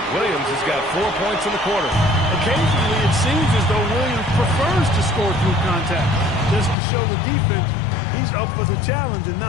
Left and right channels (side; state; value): right; drops out; at 6.8 s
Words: Williams has got 4 points in the quarter. Occasionally, it seems as though Williams prefers to score through contact. Just to show the defense he's up for the challenge and